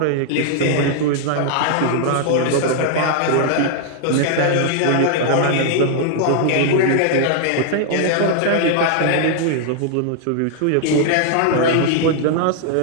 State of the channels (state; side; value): different; both; correlation 0.00